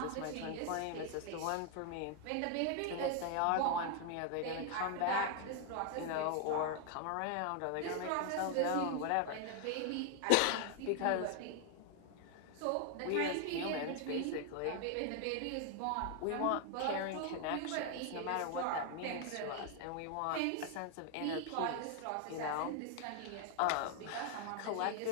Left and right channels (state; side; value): different; both; correlation 0.00